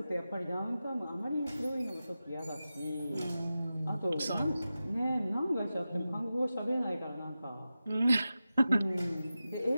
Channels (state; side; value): inverted; both; correlation -0.93